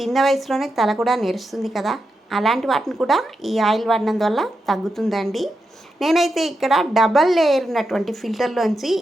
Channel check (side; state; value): both; normal; correlation 0.87